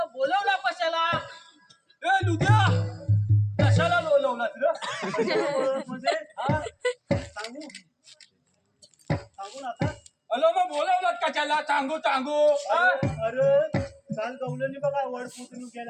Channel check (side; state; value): both; identical; correlation 1.00